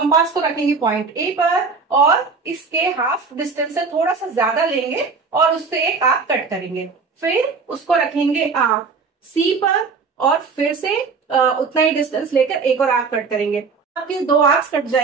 को रखेंगे पॉइंट A पर और इसके हाफ डिस्टेंस से थोड़ा सा ज्यादा लेंगे और उससे एक आर्क कट करेंगे। फिर उसको रखेंगे आप C पर और फिर से उतना ही डिस्टेंस लेकर एक और आर्क कट करेंगे। आपके 2 आर्क्स कट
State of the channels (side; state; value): left; quieter; 4.9 dB